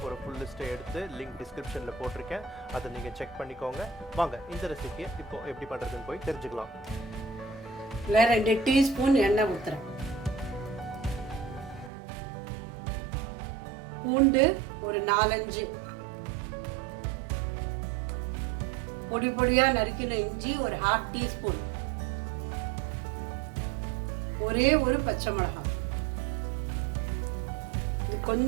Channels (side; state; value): left; drops out; at 11.9 s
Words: ஒரு ஃபுல் லிஸ்ட்டை எடுத்து லிங்க் டிஸ்கிரிப்ஷன்ல போட்டிருக்கேன். அதை நீங்க செக் பண்ணிக்கோங்க. வாங்க இந்த ரெசிபியை இப்போ எப்படி பண்றதுன்னு போய் தெரிஞ்சுக்கலாம். 2 டீஸ்பூன் எண்ணெய் ஊத்துறேன். பூண்டு ஒரு 4-5, பொடி பொடியா நறுக்கின இஞ்சி ஒரு 1/2 டீஸ்பூன், ஒரே ஒரு பச்சை மிளகாய். இது